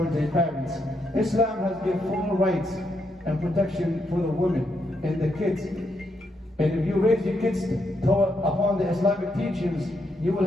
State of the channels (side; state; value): both; normal; correlation 0.79